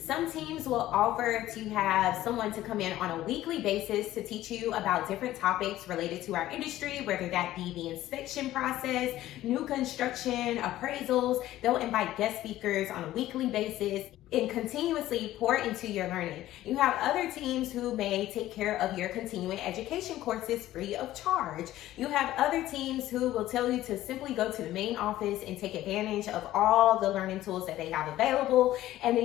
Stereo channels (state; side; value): quieter; right; 14.5 dB